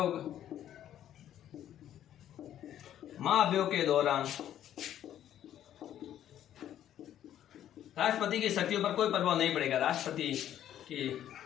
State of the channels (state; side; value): quieter; right; 11.2 dB